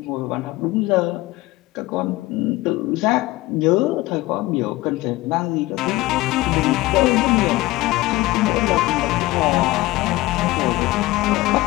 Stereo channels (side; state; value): right; quieter; 19.0 dB